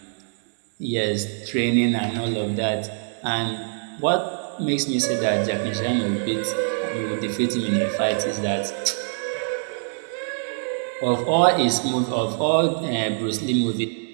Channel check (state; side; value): silent; left; digital silence